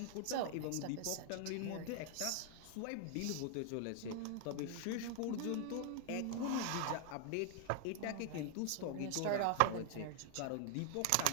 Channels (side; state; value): both; different; correlation 0.00